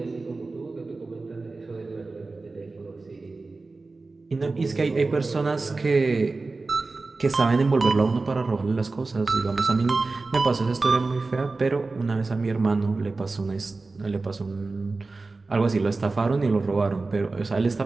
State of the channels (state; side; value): quieter; left; 3.6 dB